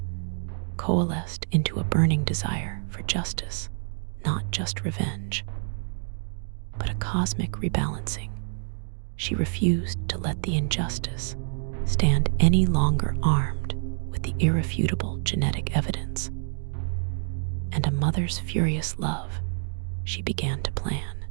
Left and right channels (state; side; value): silent; left; digital silence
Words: coalesced into a burning desire for justice, not just revenge, but a cosmic rebalancing. She refused to let the injustice stand any longer armed with the irrefutable genetic evidence. And a mother's furious love, she began to plan.